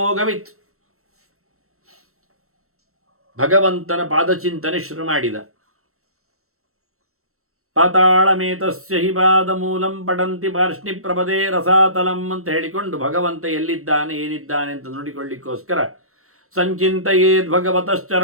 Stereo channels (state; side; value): late; left; 0.63 ms